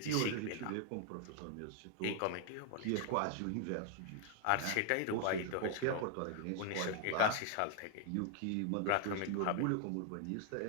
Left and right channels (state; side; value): different; both; correlation 0.00